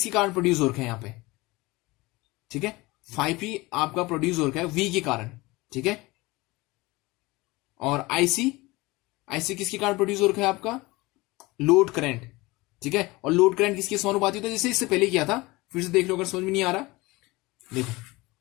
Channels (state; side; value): quieter; right; 21.9 dB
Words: कारण प्रोड्यूस हो रखा है यहां पे, ठीक है, 5p आपका प्रोड्यूस हो रखा है v के कारण, ठीक है। और आईसी किसके कारण प्रोड्यूस हो रखा है आपका, लोड करंट, ठीक है। और लोड करंट किसके समानुपाती होता है, जैसे इससे पहले किया था, फिर से देख लो अगर समझ में नहीं आ रहा। देखो